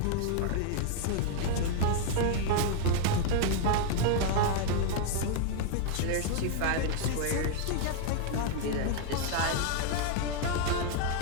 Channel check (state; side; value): different; both; correlation 0.00